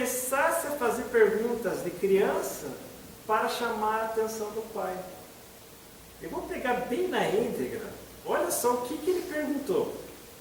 a fazer perguntas de criança para chamar a atenção do pai. Eu vou pegar bem na íntegra. Olha só o que ele perguntou.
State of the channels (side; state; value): both; identical; correlation 1.00